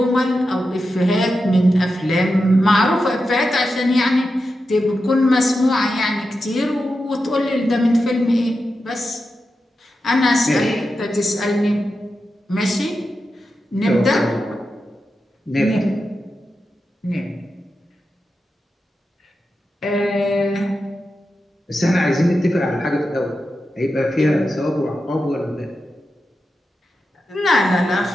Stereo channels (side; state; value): both; normal; correlation 0.90